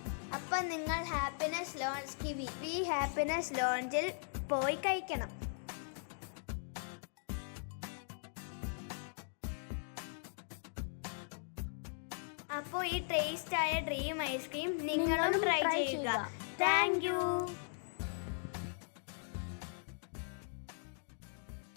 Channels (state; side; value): silent; right; digital silence